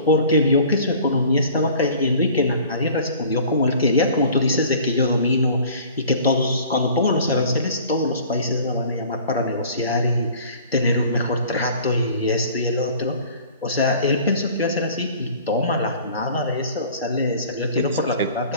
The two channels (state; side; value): inverted; both; correlation -0.48